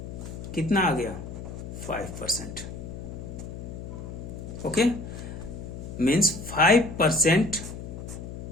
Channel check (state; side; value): noise; left; hum, 9 dB below the sound